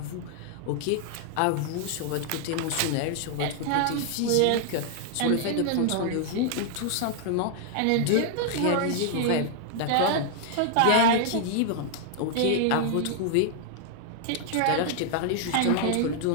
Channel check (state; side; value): different; both; correlation 0.00